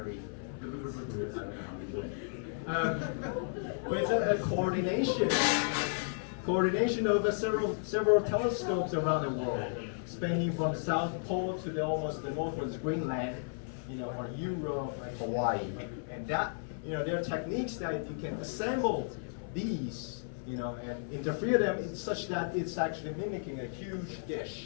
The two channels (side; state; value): right; silent; 55 dB below the other